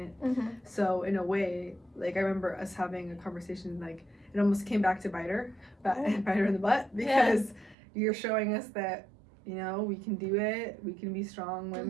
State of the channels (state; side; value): drops out; left; at 7.8 s